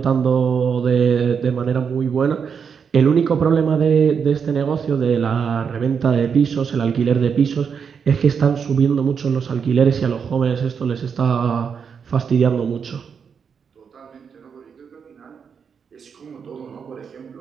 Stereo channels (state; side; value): quieter; left; 6.6 dB